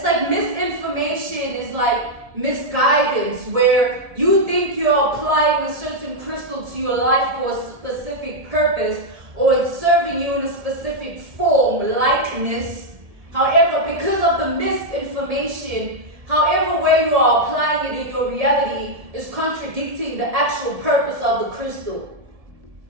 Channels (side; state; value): left; late; 1.7 ms